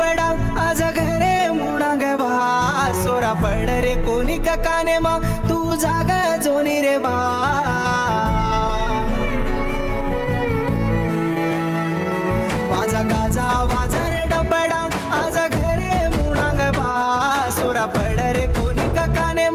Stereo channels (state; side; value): identical; both; correlation 1.00